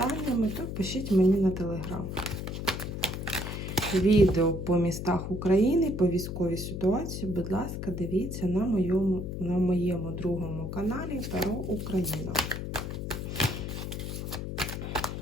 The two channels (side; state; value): left; noise; hum, 5 dB below the sound